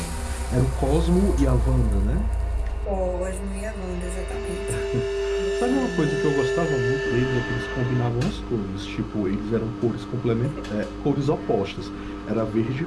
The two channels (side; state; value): both; identical; correlation 1.00